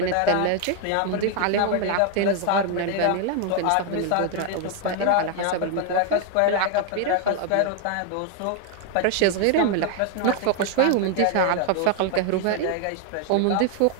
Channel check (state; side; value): different; both; correlation 0.01